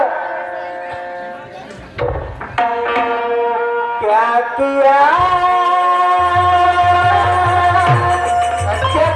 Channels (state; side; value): identical; both; correlation 1.00